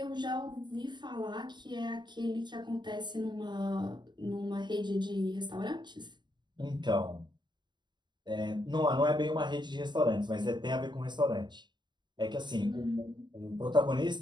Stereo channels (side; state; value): left; late; 0.22 ms